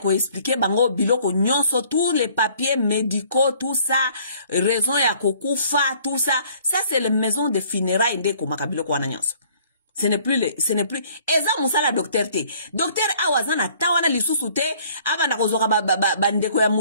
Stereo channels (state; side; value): inverted; both; correlation -0.58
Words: expliquer bango biloko nyonso tous les papiers médicaux tout ça raison ya kokufa tout ça c'est les maisons de funérailles ndeko makabiloko wana nyonso ce n'est plus eza musala docteur te docteur awazana tawana lisusu te abanda kozoka bandeko ya